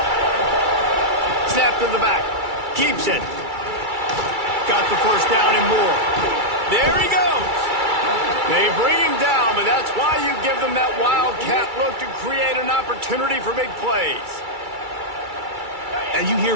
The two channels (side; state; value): left; late; 2.3 ms